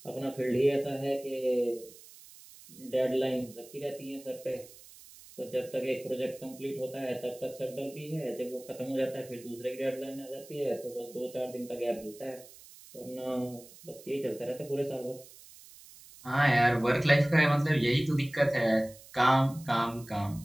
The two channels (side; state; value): right; noise; hiss, 20 dB below the sound